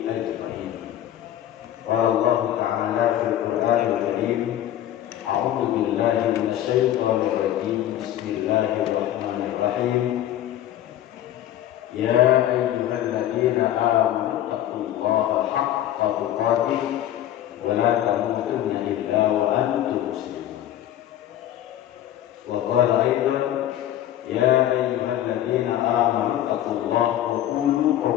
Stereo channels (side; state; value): right; quieter; 12.2 dB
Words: ajma'in. Qala Allah ta'ala fil Qur'anil Karim, a'udzu billahi minasyaitonir rajim. Bismillahirrahmanirrahim. Ya ayyuhalladzina amanu taqullaha haqqa tuqatih wa la tamutunna illa wa antum muslimun. Wa qala aidan, ya ayyuhalladzina amanu taqullaha wa qulu